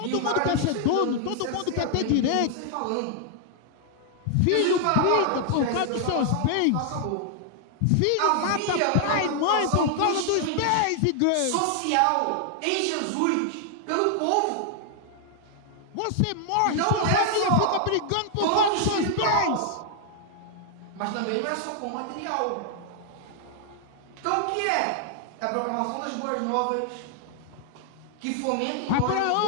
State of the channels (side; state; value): both; different; correlation 0.00